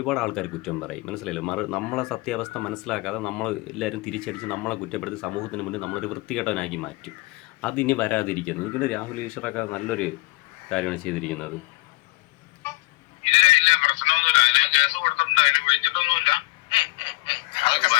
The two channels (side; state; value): right; quieter; 23.7 dB